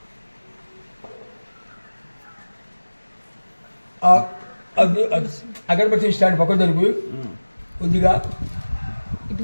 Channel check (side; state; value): both; inverted; correlation -1.00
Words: అగరబత్తి స్టాండ్ పక్కన జరుపు కొద్దిగా